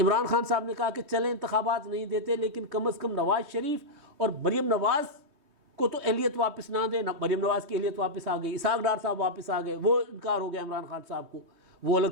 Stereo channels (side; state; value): left; late; 3.2 ms